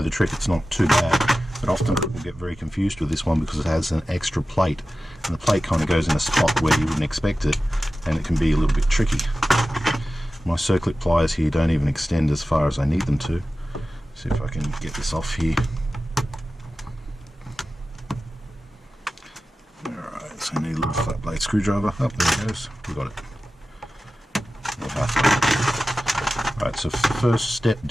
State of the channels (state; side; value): normal; both; correlation 0.95